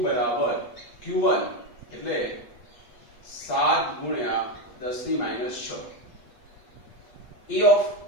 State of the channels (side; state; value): right; late; 8.3 ms